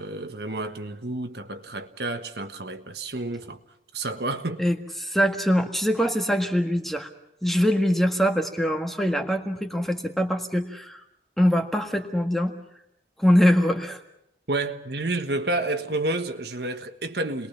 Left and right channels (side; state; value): both; normal; correlation 0.80